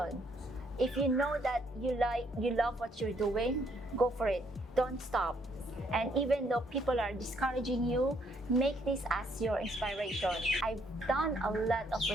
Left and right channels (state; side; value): normal; both; correlation 0.69